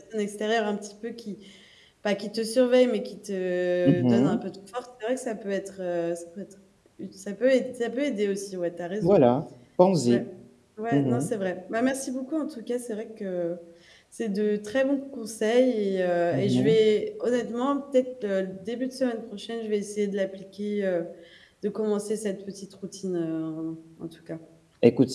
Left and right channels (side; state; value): both; identical; correlation 1.00